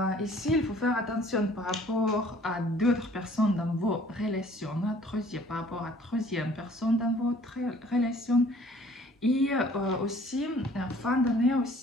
Ici, il faut faire attention par rapport à d'autres personnes dans vos relations, par rapport à troisième personne dans votre relation. Et aussi, en fin d'année,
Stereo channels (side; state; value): both; normal; correlation 0.55